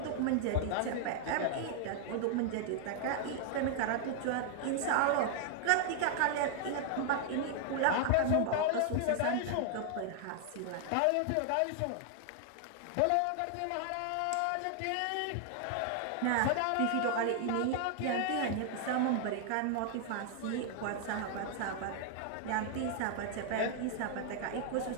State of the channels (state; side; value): different; both; correlation 0.00